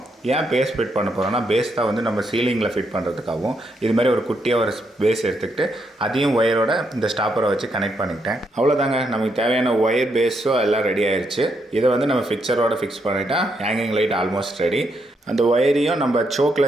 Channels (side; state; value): both; normal; correlation 0.78